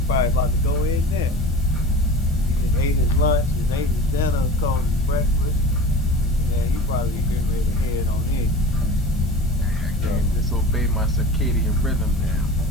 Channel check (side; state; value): both; normal; correlation 0.36